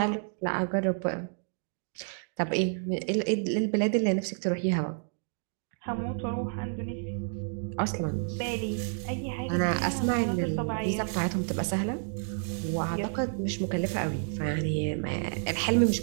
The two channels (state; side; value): silent; left; digital silence